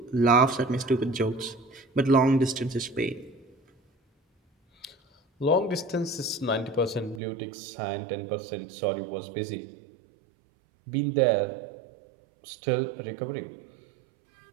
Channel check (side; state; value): left; drops out; at 7.2 s